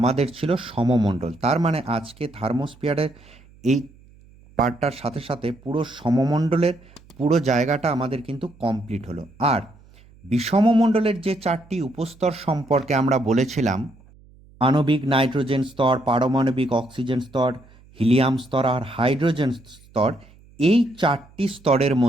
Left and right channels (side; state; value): right; noise; hum, 26 dB below the sound